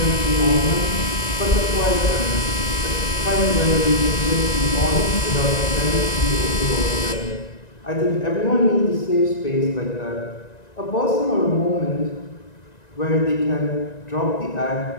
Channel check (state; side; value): late; right; 1.9 ms